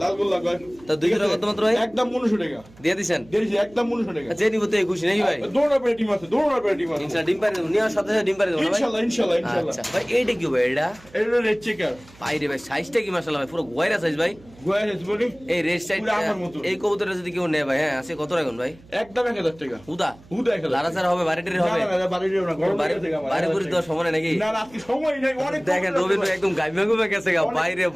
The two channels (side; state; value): right; noise; hum, 24 dB below the sound